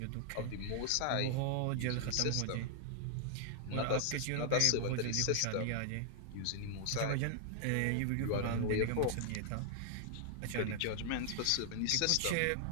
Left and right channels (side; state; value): both; different; correlation 0.00